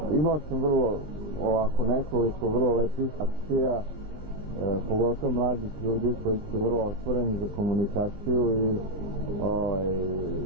imao sam nekoliko vrlo lepih akcija, pogotovo mladih ljudi koji su vrlo otvoreni za komunikaciju i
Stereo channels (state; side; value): late; left; 19 ms